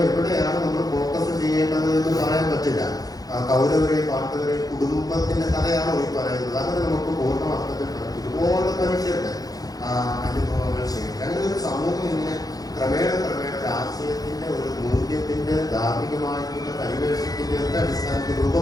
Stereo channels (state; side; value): late; right; 0.18 ms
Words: എവിടെയാണ് നമ്മൾ ഫോക്കസ് ചെയ്യേണ്ടത് എന്ന് പറയാൻ പറ്റില്ല. കൗരവരെയും പാണ്ഡവരെയും കുടുംബത്തിന്റെ കഥയാണ് ഈ പറയുന്നത്. അങ്ങനെ നമുക്ക് പൂർണ്ണ അർത്ഥത്തിൽ ഒരുപാട് മനുഷ്യരുടെ അനുഭവങ്ങൾ ശേഖരിക്കും. അങ്ങനെ ഒരു സമൂഹം ഇങ്ങനെ ക്രമേണ രാഷ്ട്രീയത്തിന്റെ ഒരു മൂല്യത്തിന്റെ ധാർമ്മികമായിട്ടുള്ള പരിവേഷത്തിന്റെ ഒക്കെ അടിസ്ഥാനത്തിൽ